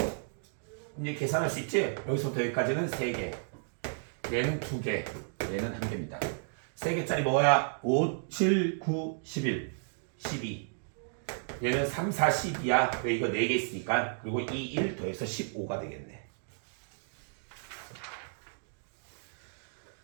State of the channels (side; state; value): left; silent; digital silence